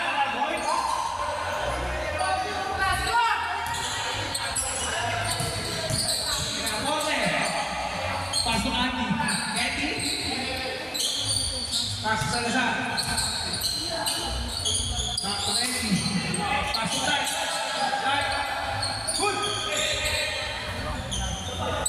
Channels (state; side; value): identical; both; correlation 1.00